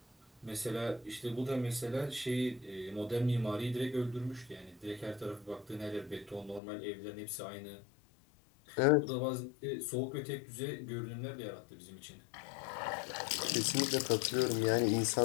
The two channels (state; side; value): drops out; right; at 6.6 s